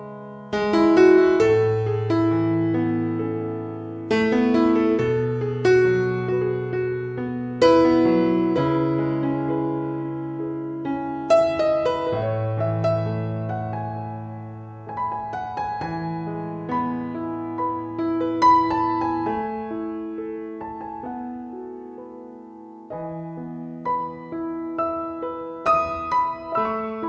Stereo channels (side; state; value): both; identical; correlation 1.00